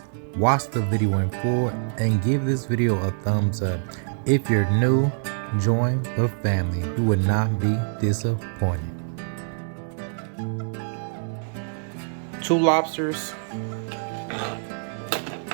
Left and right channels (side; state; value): left; silent; digital silence